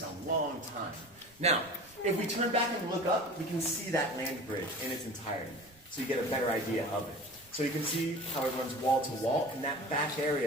a long time. Now, if we turn back and look up, we can see that land bridge in its entirety. So you get a better idea of it. So you can see how it runs wall to wall, and that back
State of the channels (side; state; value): right; noise; rumble, 28 dB below the sound